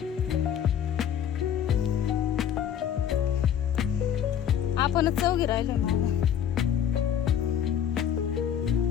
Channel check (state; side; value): quieter; right; 9.3 dB